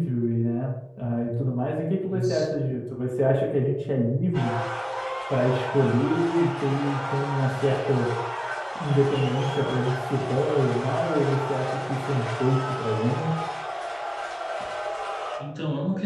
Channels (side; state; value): both; identical; correlation 1.00